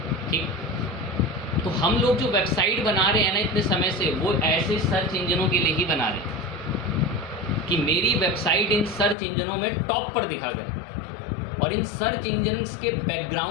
ठीक। तो हम लोग जो वेबसाइट बना रहे हैं ना इतने समय से, वो ऐसे सर्च इंजनों के लिए ही बना रहे हैं कि मेरी वेबसाइट इन सर्च इंजनों में टॉप पर दिखा करे। और इन सर्च इंजन्स के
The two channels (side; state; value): right; drops out; at 9.2 s